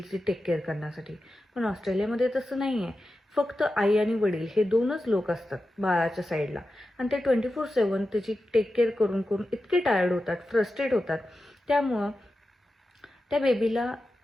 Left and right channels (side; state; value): both; normal; correlation 0.92